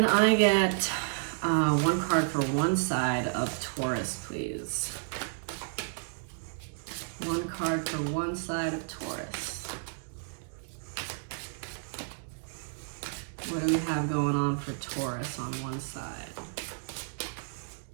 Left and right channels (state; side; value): silent; left; digital silence